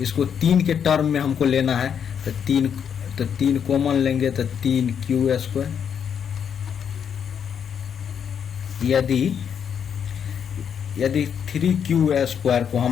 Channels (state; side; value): quieter; right; 7.8 dB